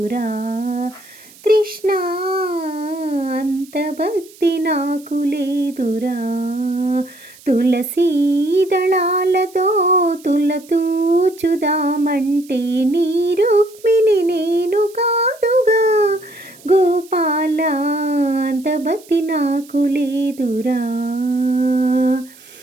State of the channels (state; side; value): noise; right; hiss, 23 dB below the sound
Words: కృష్ణ, అంత భక్తి నాకు లేదురా. తులసీ దళాలతో తులతూచుదామంటే నీ రుక్మిణి నేను కాదుగా గోపాల, అంత భక్తి నాకు లేదురా.